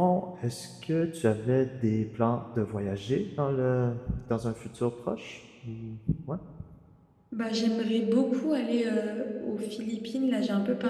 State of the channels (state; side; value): identical; both; correlation 1.00